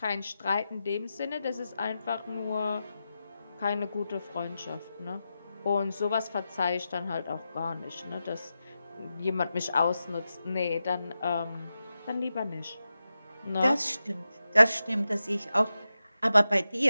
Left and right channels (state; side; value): inverted; both; correlation -0.91